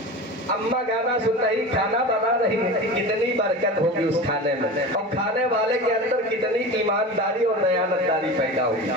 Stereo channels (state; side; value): normal; both; correlation 0.30